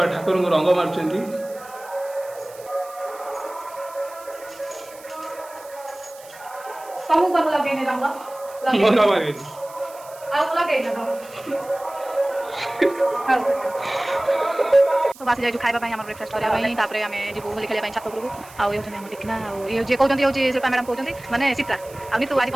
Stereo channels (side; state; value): right; noise; hiss, 21 dB below the sound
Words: ठाकुर को रंग मार्चंट तुमको कौन लगे रंग लगे सब आसी जाइए खाइबा आम ब्रेकफास्ट करने आम जीव होली खेल छात उपरको आउ ये टिकना ये जी कहते हूँ शिल्पा मैडम कहते मानने चित्रा आनी तू आज